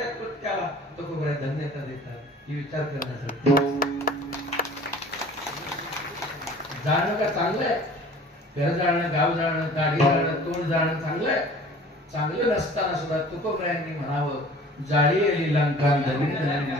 कृत्याला तुकोबराय धन्यता देतात ही विचार करण्यासाठी. जाणं का चांगलं आहे घर जाणं गाव जाणं गाडी जाणं तोंड जाणं चांगलं आहे. चांगलं नसताना सुद्धा तुकोबरायांनी म्हणावं जाळी आली लंका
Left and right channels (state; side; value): normal; both; correlation 0.47